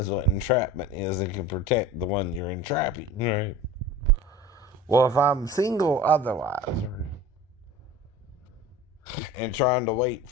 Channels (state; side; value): normal; both; correlation 0.38